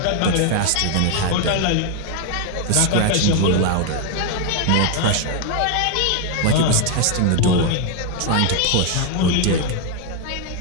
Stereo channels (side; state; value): both; different; correlation 0.00